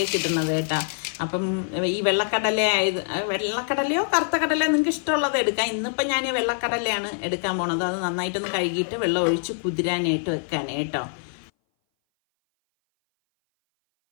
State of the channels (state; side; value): silent; right; 59 dB below the other